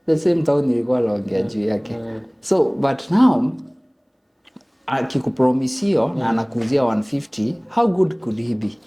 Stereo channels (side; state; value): both; identical; correlation 1.00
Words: the same town nilikuwa naongea juu yake. So but now akikupromisio na anakuuzia 150, how good could he be?